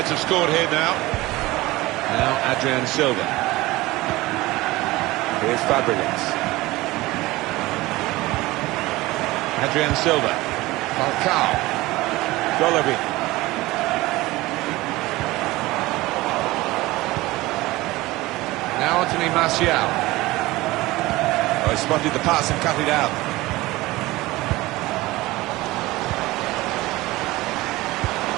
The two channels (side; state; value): left; quieter; 19.5 dB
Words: have scored here now. Now Adrian Silva. Here's Fabregas. Adrian Silva. Falcao. Golovin. Now Anthony Martial. Oh, he spotted the pass and cut it out.